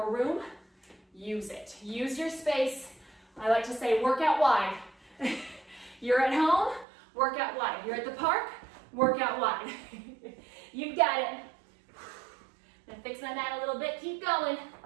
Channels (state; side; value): drops out; left; at 6.9 s